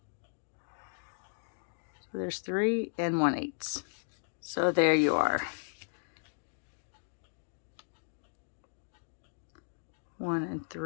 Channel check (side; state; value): right; silent; digital silence